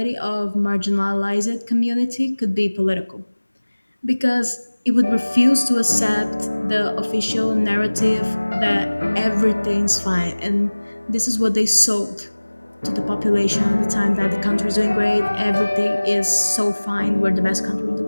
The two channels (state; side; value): inverted; both; correlation -1.00